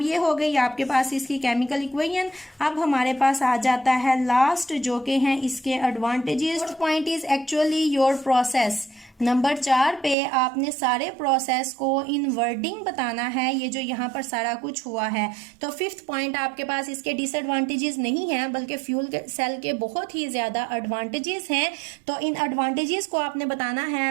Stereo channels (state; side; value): drops out; left; at 10.2 s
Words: ये हो गई आपके पास इसकी केमिकल इक्वेशन। अब हमारे पास आ जाता है लास्ट जो कि हैं इसके advantages. Point is actually your process. Number 4 पे आपने सारे प्रोसेस को इन वर्डिंग बताना है, ये जो यहाँ पर सारा कुछ हुआ है। तो 5th पॉइंट आपके पास इसके डिसएडवांटेजेस नहीं हैं, बल्कि फ्यूल सेल के बहुत ही ज़्यादा एडवांटेजेस हैं। तो इन एडवांटेजेस को आपने बताना है।